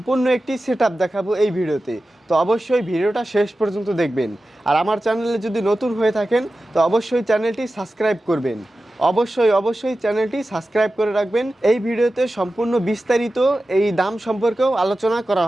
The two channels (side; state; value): both; normal; correlation 0.94